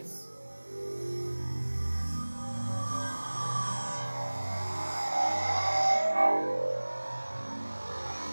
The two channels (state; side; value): inverted; both; correlation -1.00